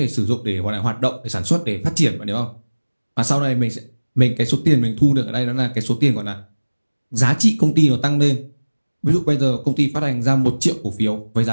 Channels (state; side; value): inverted; both; correlation -1.00